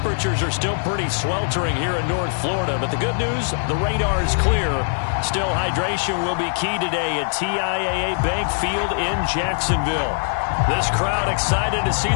are still pretty sweltering here in North Florida. But the good news, the radar is clear. Still, hydration will be key today at TIAA Bank Field in Jacksonville. This crowd excited to see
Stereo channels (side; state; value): right; silent; 61 dB below the other